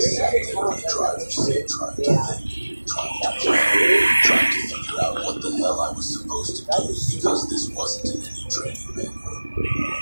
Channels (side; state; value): both; inverted; correlation -1.00